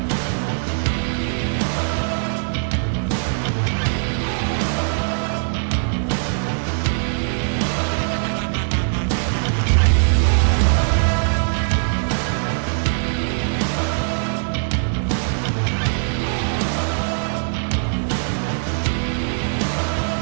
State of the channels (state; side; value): silent; left; 57 dB below the other